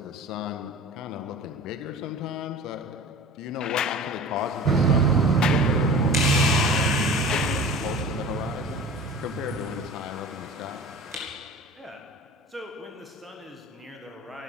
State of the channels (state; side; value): normal; both; correlation 0.38